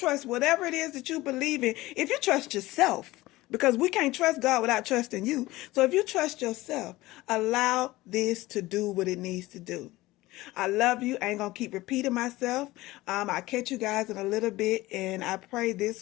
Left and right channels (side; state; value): right; quieter; 18.6 dB